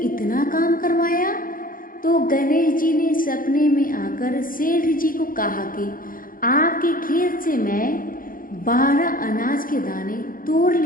इतना काम करवाया। तो गणेश जी ने सपने में आकर सेठ जी को कहा कि आपके खेत से मैं 12 अनाज के दाने तोड़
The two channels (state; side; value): late; right; 0.40 ms